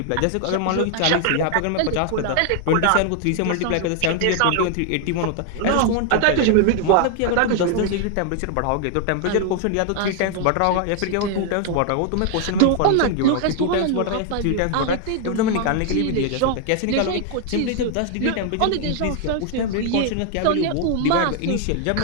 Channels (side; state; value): both; different; correlation 0.00